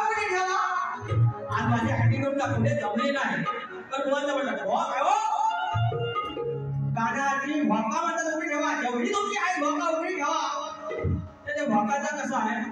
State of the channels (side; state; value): both; identical; correlation 1.00